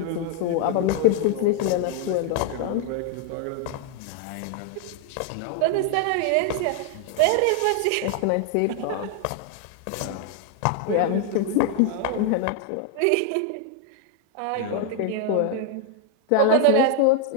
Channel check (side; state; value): both; different; correlation 0.00